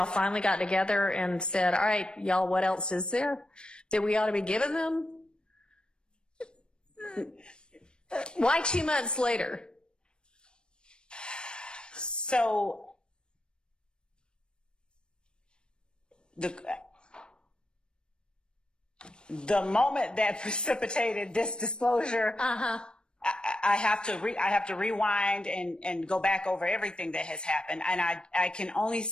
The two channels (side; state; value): right; late; 0.053 ms